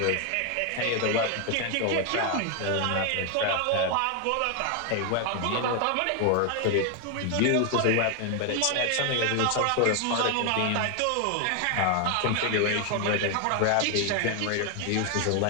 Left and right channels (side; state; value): both; different; correlation 0.01